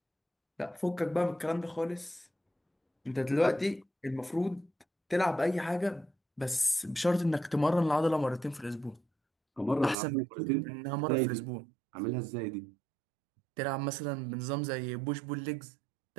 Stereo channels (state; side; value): drops out; left; at 10.0 s